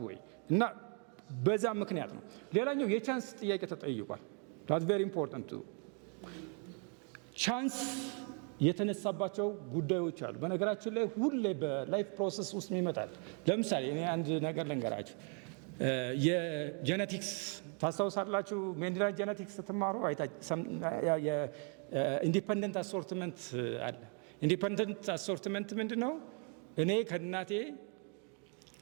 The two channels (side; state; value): left; quieter; 39.7 dB